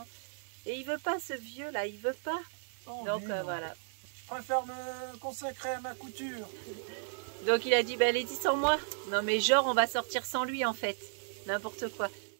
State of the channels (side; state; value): left; silent; 55 dB below the other